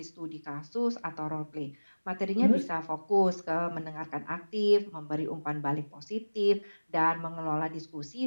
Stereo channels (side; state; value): both; inverted; correlation -1.00